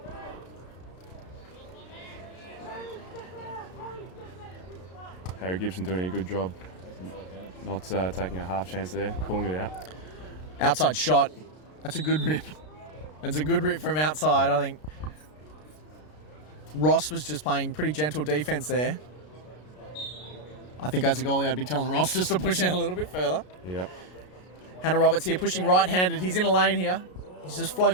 Harry Gibson doing a good job. Not taking a half chance there, pulling it out. Outside shot. That's a good rip. It's a good rip from outside, I think. Ross was just playing pretty gentle defence there. I think as a goalie, I'd be telling Ross just to push out a little bit further. Yep. Hannah Roberts here pushing right-handed. He's in a lane here. He's just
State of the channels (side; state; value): right; late; 33 ms